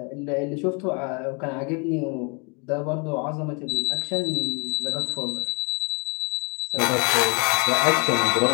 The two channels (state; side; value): quieter; right; 33.3 dB